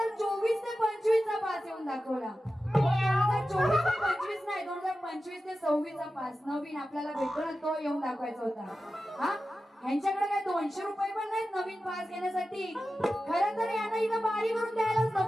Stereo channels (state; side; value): normal; both; correlation 0.93